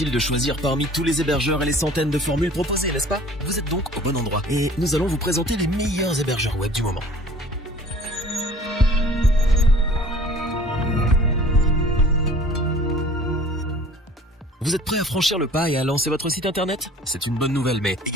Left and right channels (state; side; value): normal; both; correlation 0.49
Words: de choisir parmi tous les hébergeurs et les centaines de formules proposées, n'est-ce pas? Vous êtes donc au bon endroit. Et nous allons vous présenter les meilleurs hébergeurs web du moment. Vous êtes prêt à franchir le pas et à lancer votre site internet? C'est une bonne nouvelle, mais